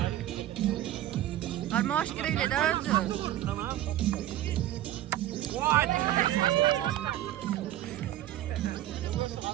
Arma hoş gireyle daha özü. Tamam.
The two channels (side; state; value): left; quieter; 13.4 dB